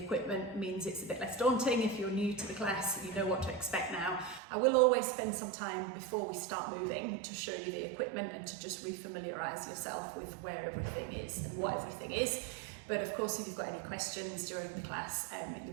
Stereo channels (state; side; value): drops out; left; at 4.4 s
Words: means it's a bit less daunting. If you're new to the class, you know what to expect now. I will always spend some time before we start moving to show you the equipment and to just refamiliarize yourself with where everything is and what everything is. But of course, if you've got any questions during the class, you'll